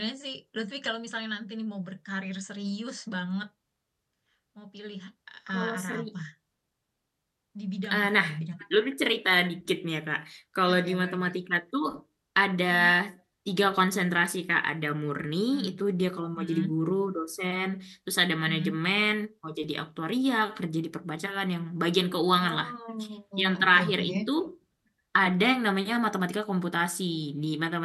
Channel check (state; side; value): identical; both; correlation 1.00